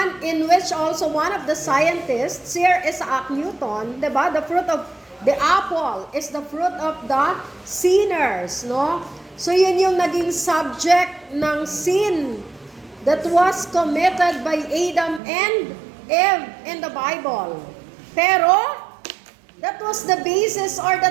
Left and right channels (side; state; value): left; drops out; at 15.2 s